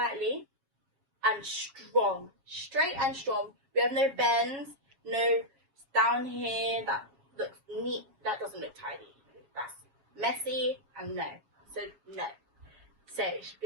and strong. Straight and strong. We have no bends, no down here that looks neat. That doesn't look tidy. That's messy and no. So, no. So, it should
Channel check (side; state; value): left; late; 7.3 ms